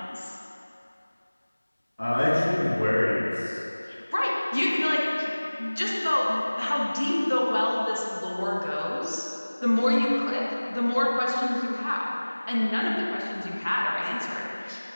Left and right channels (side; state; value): both; inverted; correlation -1.00